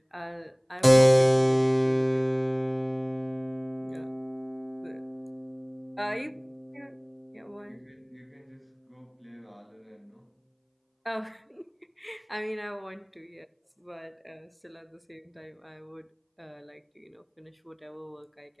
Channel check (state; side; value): identical; both; correlation 1.00